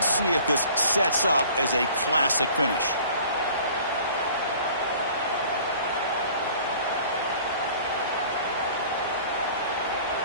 see if this sets up as a classic finish.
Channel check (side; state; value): both; inverted; correlation -0.49